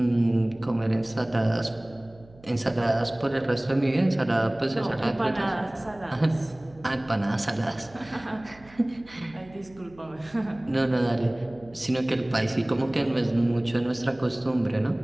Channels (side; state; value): right; noise; hum, 24 dB below the sound